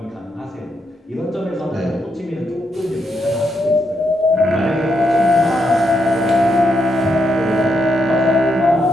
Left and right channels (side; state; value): both; normal; correlation 0.80